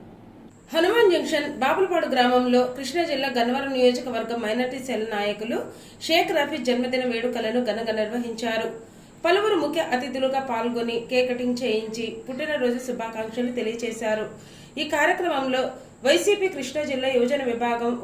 హనుమాన్ జంక్షన్ బాపులపాడు గ్రామంలో కృష్ణా జిల్లా గన్నవరం నియోజకవర్గం మైనారిటీ సెల్ నాయకులు షేక్ రఫీ జన్మదిన వేడుకలను ఘనంగా నిర్వహించారు. పలువురు ముఖ్య అతిథులుగా పాల్గొని కేక్ కటింగ్ చేయించి పుట్టినరోజు శుభాకాంక్షలు తెలియజేశారు. ఈ కార్యక్రమంలో వైసీపీ కృష్ణా జిల్లా యువజన విభాగం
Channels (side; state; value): both; identical; correlation 1.00